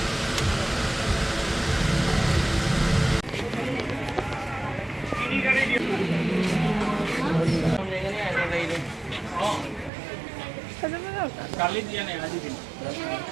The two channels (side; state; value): left; drops out; at 9.9 s